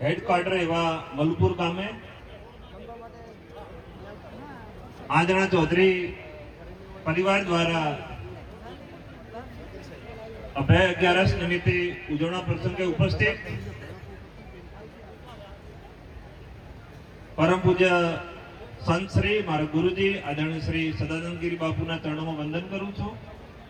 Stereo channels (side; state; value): both; identical; correlation 1.00